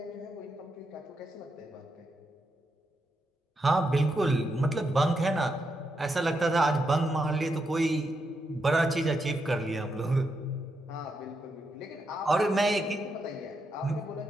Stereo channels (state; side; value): normal; both; correlation 0.83